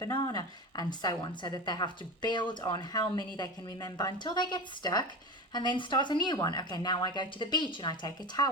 and so on, so that they have to build on how many they can remember until they get stuck and then start a new one. Okay, now I go to the beach and I take a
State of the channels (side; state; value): both; normal; correlation 0.26